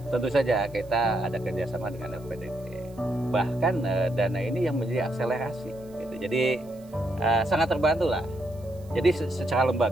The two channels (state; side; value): noise; right; hiss, 28 dB below the sound